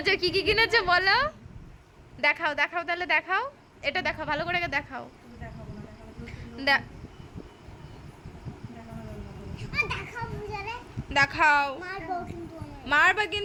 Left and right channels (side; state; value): both; identical; correlation 1.00